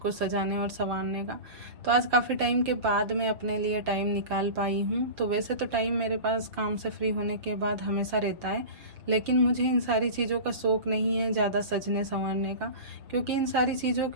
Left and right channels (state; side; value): late; left; 6.7 ms